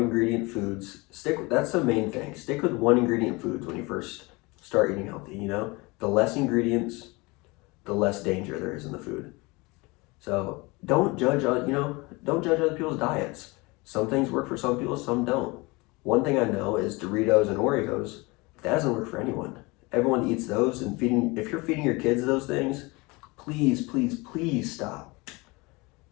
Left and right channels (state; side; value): quieter; right; 25.0 dB